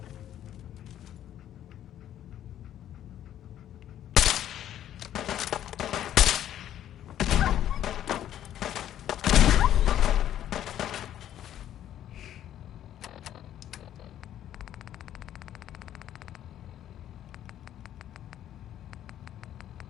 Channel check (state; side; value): quieter; right; 11.4 dB